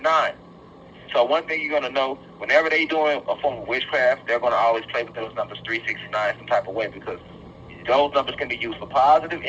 So one thing you're going to know, whenever they doing a form of witchcraft, they're going to always play with those numbers 3, 6, and 9 some type of way, because those numbers can be used for positive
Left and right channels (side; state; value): both; identical; correlation 1.00